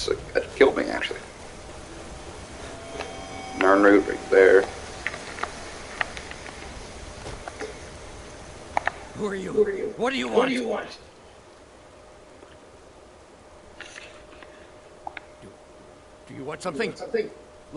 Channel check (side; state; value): both; identical; correlation 1.00